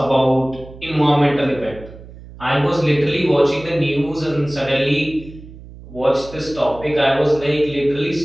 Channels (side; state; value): right; noise; hum, 17 dB below the sound